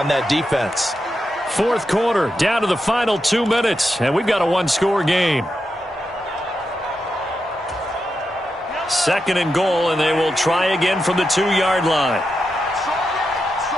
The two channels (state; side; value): normal; both; correlation 0.87